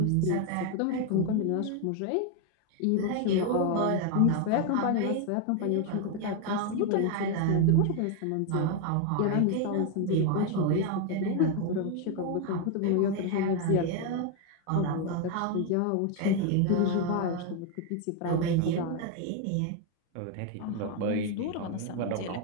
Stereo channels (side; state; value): both; different; correlation 0.01